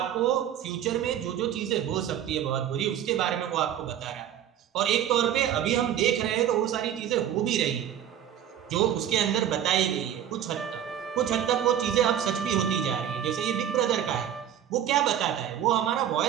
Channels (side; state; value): left; quieter; 10.2 dB